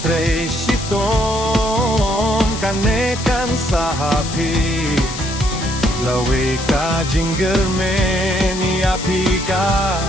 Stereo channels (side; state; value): left; noise; hiss, 10 dB below the sound